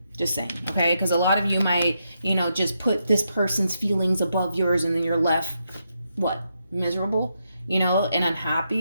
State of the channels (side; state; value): both; inverted; correlation -0.82